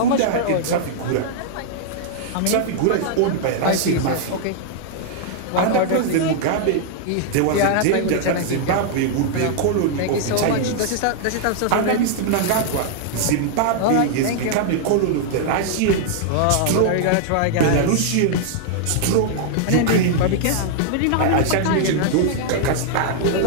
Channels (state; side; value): different; both; correlation -0.01